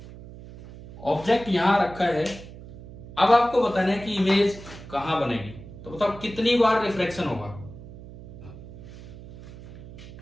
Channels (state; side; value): noise; right; hum, 15 dB below the sound